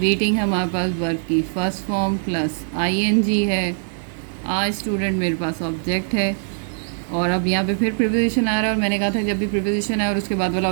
हमारे पास वर्ब की फर्स्ट फॉर्म प्लस आईएनजी है, आ स्टूडेंट मेरे पास ऑब्जेक्ट है, और अब यहाँ पे फिर प्रीपोजिशन आ रहा है, और मैंने कहा था जब भी प्रीपोजिशन आए और उसके बाद वाला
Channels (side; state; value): left; silent; 64 dB below the other